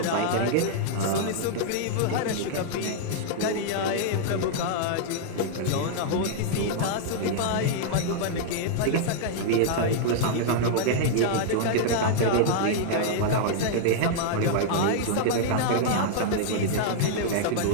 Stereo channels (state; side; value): different; both; correlation -0.01